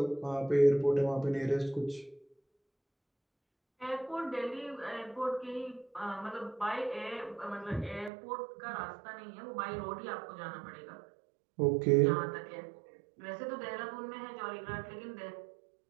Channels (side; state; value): left; drops out; at 8.1 s